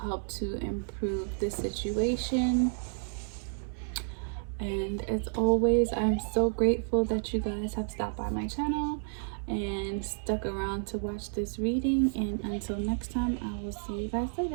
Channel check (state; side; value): silent; left; digital silence